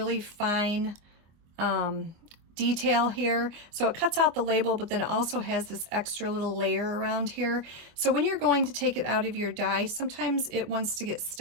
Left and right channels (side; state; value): left; late; 24 ms